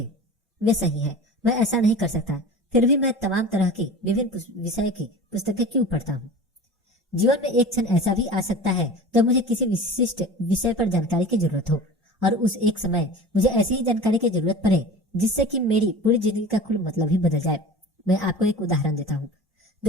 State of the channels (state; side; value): normal; both; correlation 0.36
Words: वे सही है, मैं ऐसा नहीं कर सकता, फिर भी मैं तमाम तरह की विभिन्न विषय की पुस्तकें क्यों पढ़ता हूँ? जीवन में एक क्षण ऐसा भी आ सकता है जब मुझे किसी विशिष्ट विषय पर जानकारी की जरूरत हो, और उस एक समय मुझे ऐसी ही जानकारी की जरूरत पड़े जिससे कि मेरी पूरी जिंदगी का कुल मतलब ही बदल जाए। मैं आपको एक उदाहरण देता हूँ।